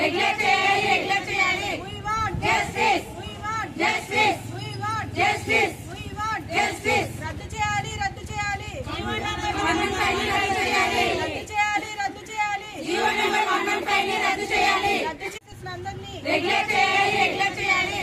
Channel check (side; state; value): both; identical; correlation 1.00